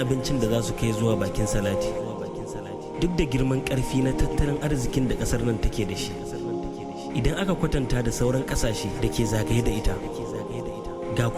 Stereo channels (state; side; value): identical; both; correlation 1.00